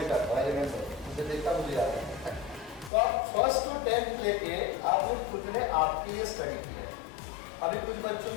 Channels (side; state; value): right; drops out; at 2.9 s